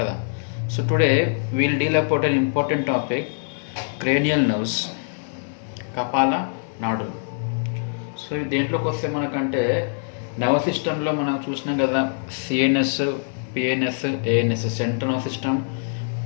So today we will deal about an important topic, cranial nerves, కపాల నాడులు. So దేంట్లోకి వస్తే మనకంటే nerve సిస్టంలో మనం చూసినాం కదా, CNS, PNS, ANS, central nerve system,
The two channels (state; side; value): silent; right; 63 dB below the other